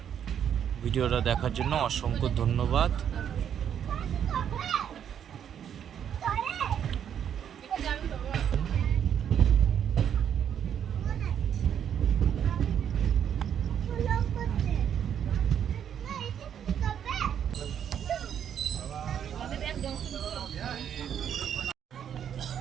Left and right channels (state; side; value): quieter; left; 8.9 dB